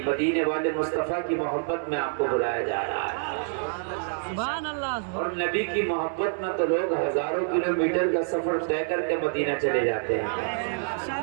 مدینے والے مصطفیٰ کی محبت میں آپ کو بلایا جا رہا ہے سبحان اللہ اور نبی کی محبت میں تو لوگ ہزاروں کلومیٹر کا سفر طے کر کے مدینہ چلے جاتے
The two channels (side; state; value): left; silent; digital silence